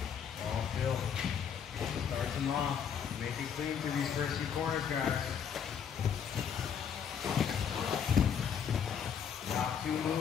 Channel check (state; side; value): quieter; right; 7.7 dB